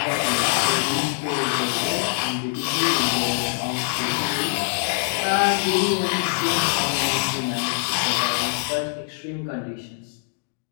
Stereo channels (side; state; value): right; silent; digital silence